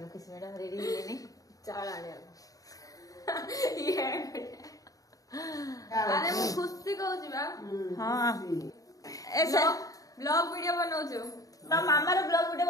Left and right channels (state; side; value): late; right; 0.17 ms